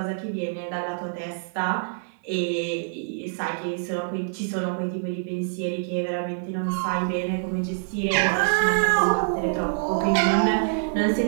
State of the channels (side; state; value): left; silent; digital silence